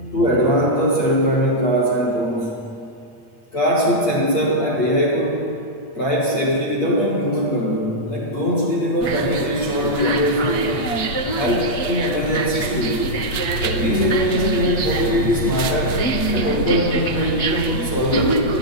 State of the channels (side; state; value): right; late; 8.4 ms